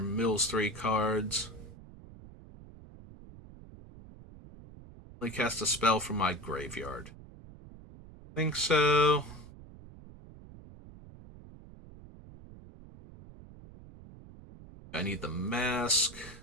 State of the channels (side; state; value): right; noise; rumble, 18 dB below the sound